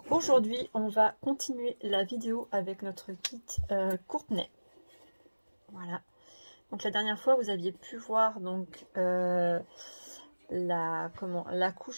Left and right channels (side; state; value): both; inverted; correlation -1.00